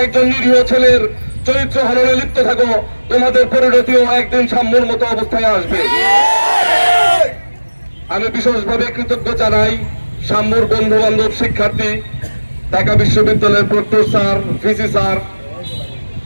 একজন নিরীহ ছেলের চরিত্র হননে লিপ্ত থাকো, তোমাদের পরিণতিও একদিন সাম্যর মতো অবস্থায় আসবে। আমি বিশেষভাবে কৃতজ্ঞ জানাই সাম্যর বন্ধু বান্ধব, শিক্ষার্থী, ঢাকা বিশ্ববিদ্যালয়ের প্রক্টর স্যার, ভিসি স্যার।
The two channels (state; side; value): inverted; both; correlation -1.00